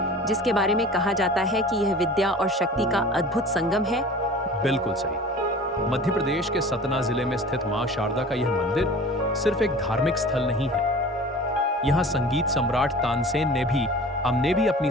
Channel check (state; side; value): normal; both; correlation 0.41